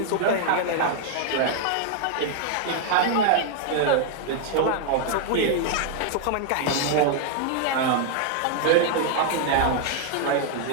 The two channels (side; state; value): both; different; correlation 0.00